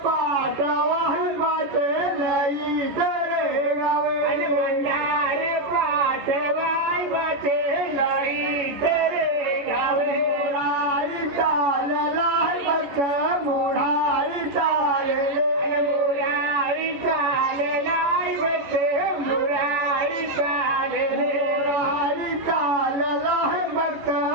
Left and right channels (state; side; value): late; left; 14 ms